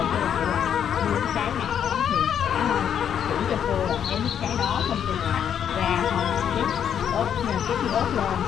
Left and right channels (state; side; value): quieter; right; 8.8 dB